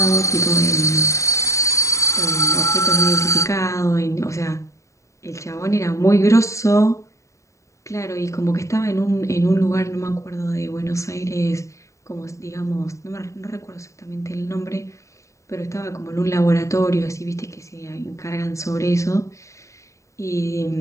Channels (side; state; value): right; late; 0.15 ms